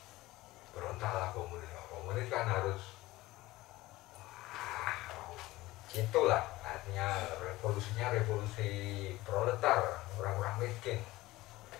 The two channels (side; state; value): right; quieter; 18.4 dB